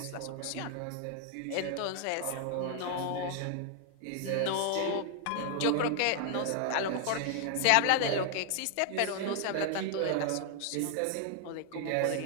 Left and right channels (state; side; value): different; both; correlation 0.00